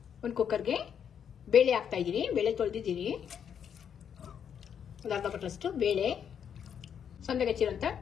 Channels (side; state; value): right; quieter; 8.1 dB